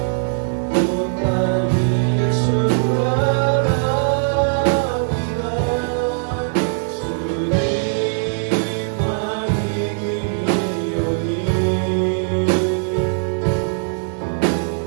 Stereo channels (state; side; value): silent; left; digital silence